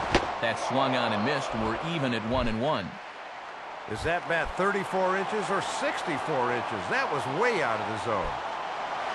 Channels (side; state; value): both; identical; correlation 1.00